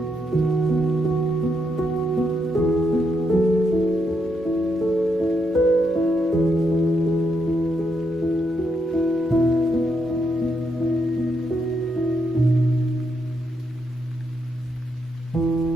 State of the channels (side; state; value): both; normal; correlation 0.79